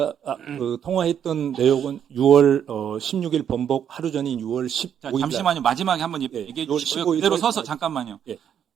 그 통화했던 내용은 6월 16일 번복 하루 전인 6월 15일. 잠시만요. 마지막에 한번 얘기해 주시고요. 그대로 서서 잠깐만요. 예.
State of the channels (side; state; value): left; quieter; 8.9 dB